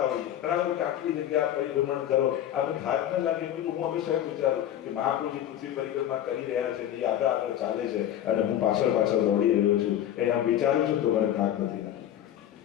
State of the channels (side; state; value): right; quieter; 11.4 dB